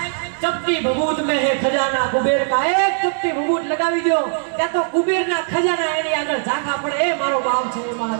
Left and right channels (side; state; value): left; silent; digital silence